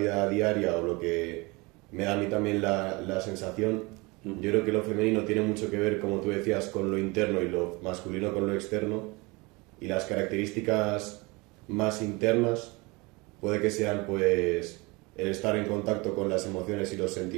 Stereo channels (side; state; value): left; quieter; 25.7 dB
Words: diaria o lo que me da a mí también la sensación, yo creo que lo femenino tiene mucho que ver, como tú decías, con lo interno y lo masculino con lo externo, y las características más internas puede que sean pues el estar en contacto con las emociones y los